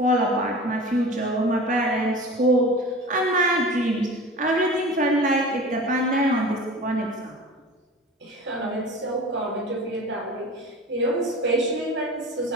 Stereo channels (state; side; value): normal; both; correlation 0.37